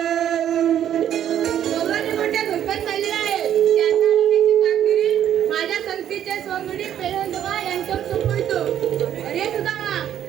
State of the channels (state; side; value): quieter; left; 10.4 dB